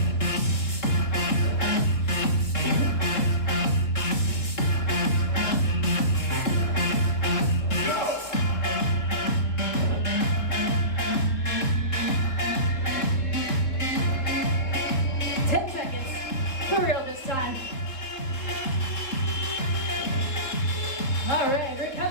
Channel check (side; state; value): right; late; 3.6 ms